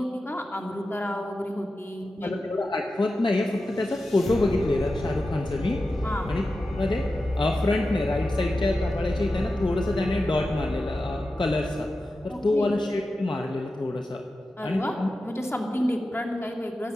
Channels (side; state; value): both; normal; correlation 0.92